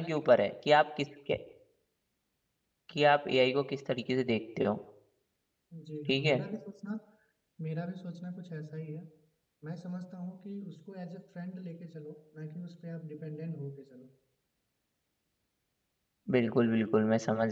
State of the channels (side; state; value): both; identical; correlation 1.00